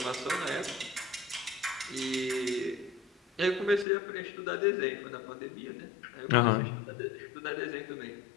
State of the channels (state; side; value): drops out; right; at 3.9 s